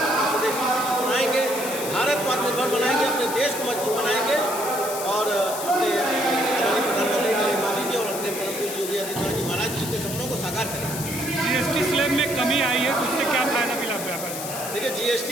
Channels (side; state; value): left; noise; hiss, 7 dB below the sound